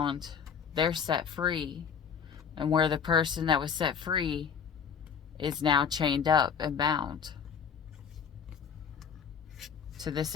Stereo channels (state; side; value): quieter; right; 7.0 dB